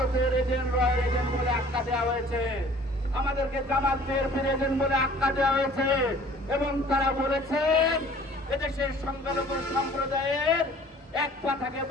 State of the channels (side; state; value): both; normal; correlation 0.51